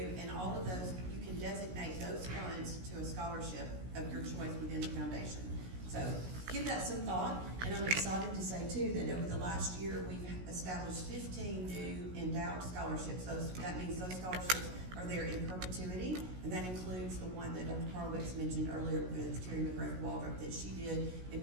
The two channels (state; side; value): late; left; 16 ms